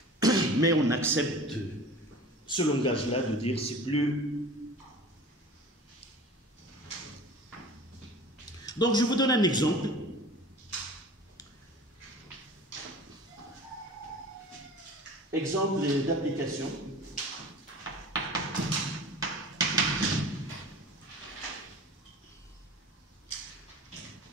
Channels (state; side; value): normal; both; correlation 0.40